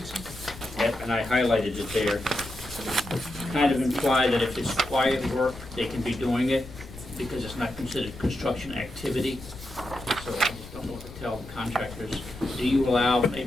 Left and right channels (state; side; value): noise; left; rumble, 15 dB below the sound